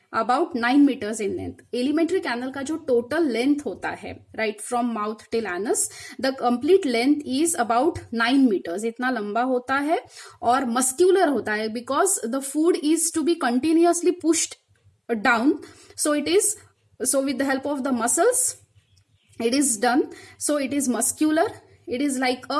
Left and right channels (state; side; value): identical; both; correlation 1.00